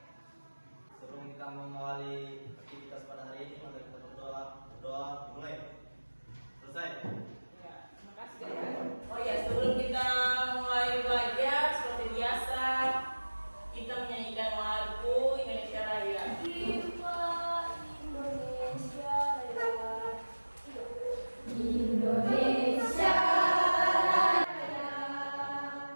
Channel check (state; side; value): inverted; both; correlation -1.00